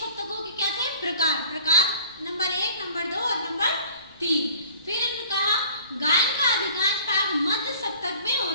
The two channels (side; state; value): both; inverted; correlation -0.49